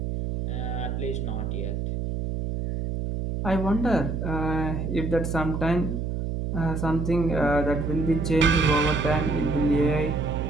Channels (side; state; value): right; noise; hum, 3 dB below the sound